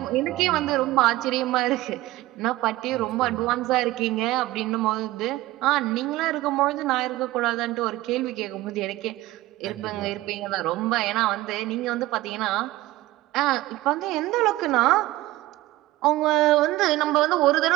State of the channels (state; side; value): quieter; left; 17.6 dB